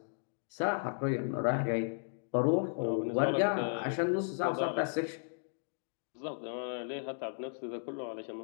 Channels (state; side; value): silent; right; digital silence